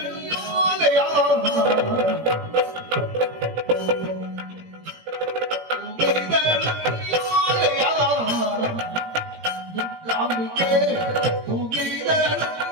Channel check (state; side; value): late; left; 17 ms